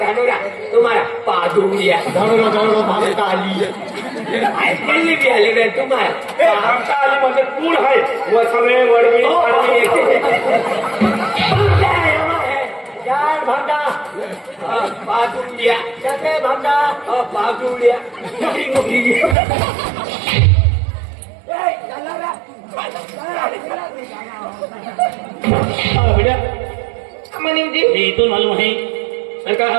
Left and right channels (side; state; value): left; drops out; at 19.4 s